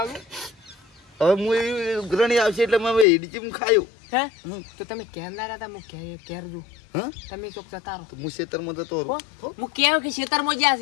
હવે હું એ ઉઘરણી આવશે એટલે મેં ઈડચી ખાયું હે હમ. તો તમે કેમ ના હતા હું કેર જો હા તમે ચોક જતા રહો તો હું ખેતરમાં જતો હો? રહું હું કેવું કે ખેતરમાં જ્યાં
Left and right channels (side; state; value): right; drops out; at 3.1 s